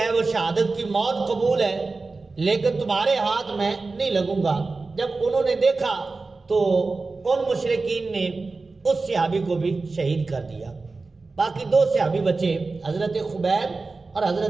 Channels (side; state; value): left; quieter; 3.8 dB